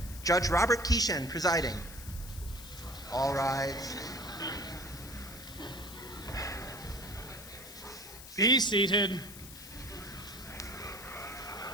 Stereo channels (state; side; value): noise; left; hiss, 14 dB below the sound